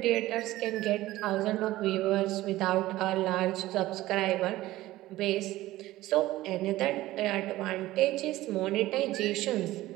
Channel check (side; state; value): left; quieter; 16.6 dB